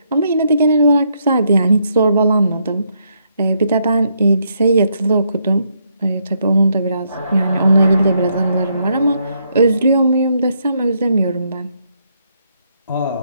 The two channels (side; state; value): both; inverted; correlation -0.75